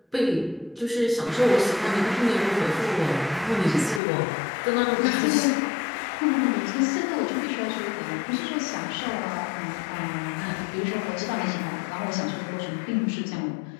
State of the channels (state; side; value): drops out; right; at 4.0 s